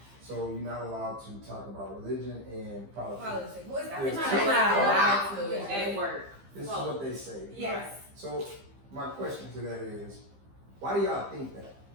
So you're not allowed to talk about religion and politics. Politics. Well, it's not It's it's too not loud. allowed to. At work. This is what they say. Yes. So my question to that is, why do y'all think that?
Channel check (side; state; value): left; late; 15 ms